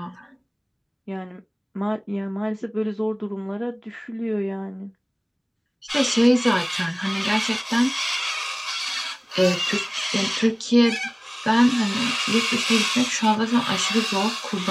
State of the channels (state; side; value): identical; both; correlation 1.00